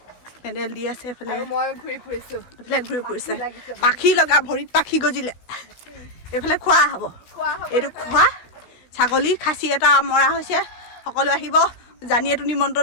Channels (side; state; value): right; late; 16 ms